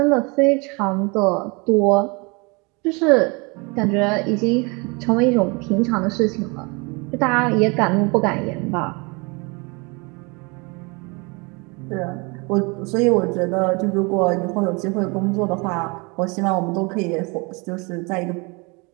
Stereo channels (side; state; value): left; quieter; 29.0 dB